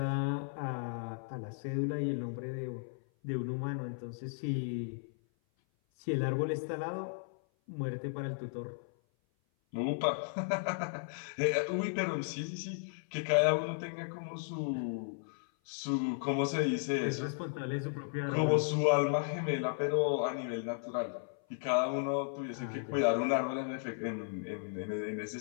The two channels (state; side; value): silent; right; 54 dB below the other